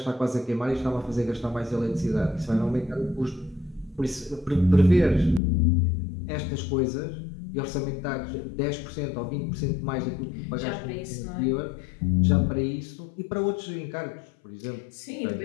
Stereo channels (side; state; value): right; drops out; at 5.4 s